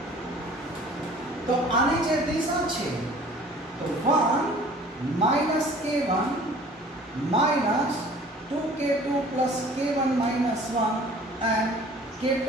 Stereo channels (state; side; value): normal; both; correlation 0.49